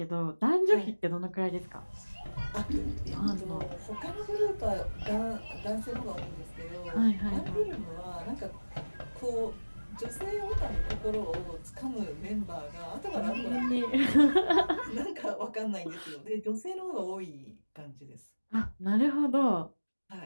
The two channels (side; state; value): both; inverted; correlation -1.00